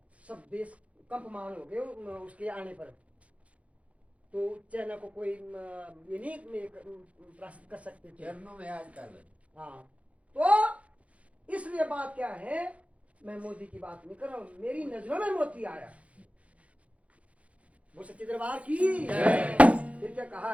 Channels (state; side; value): late; left; 0.064 ms